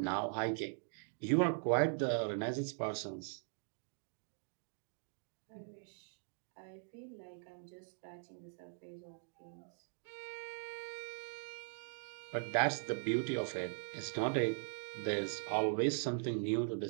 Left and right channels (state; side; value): silent; left; digital silence